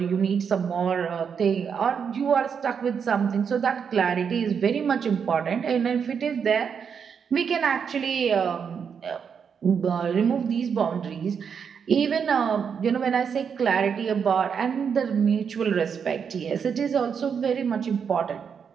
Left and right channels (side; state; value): left; quieter; 6.8 dB